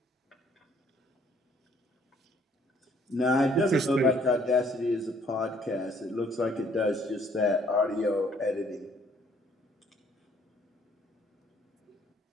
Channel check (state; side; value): normal; both; correlation 0.62